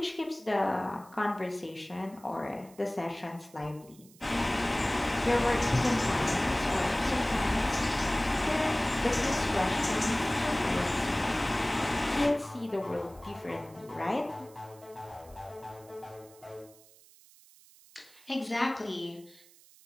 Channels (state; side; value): noise; right; hiss, 25 dB below the sound